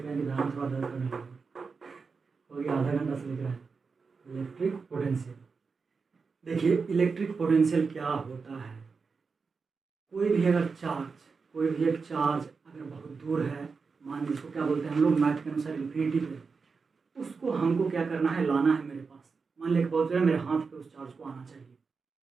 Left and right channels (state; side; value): quieter; left; 4.9 dB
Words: हैं कि दायां थोड़ा दर्द करने लगा, हो गया आधा घंटा से लिख रहा है। इलेक्ट्रिक पोटेंशियल, देखिए इलेक्ट्रिक पोटेंशियल क्या होता है। कोई भी एक चार्ज अगर बहुत दूर है, मान लीजिए इसको क्या बोलते हैं हम लोग मैथ के अनुसार इन्फिनिटी पे, उसको हमको क्या करना है, लाना है मेरे पास। मान लिया बहुत है, मेरे हाथ पे उस चार्ज को आना चाहिए,